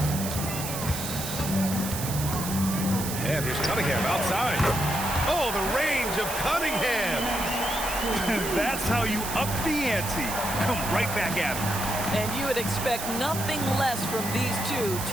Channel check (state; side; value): noise; right; hiss, 6 dB below the sound